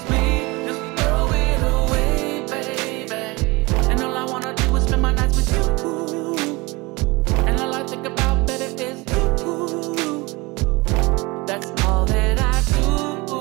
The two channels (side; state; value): left; quieter; 24.1 dB